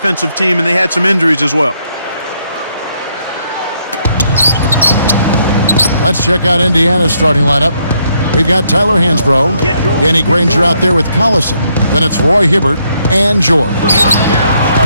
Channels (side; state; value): both; inverted; correlation -0.73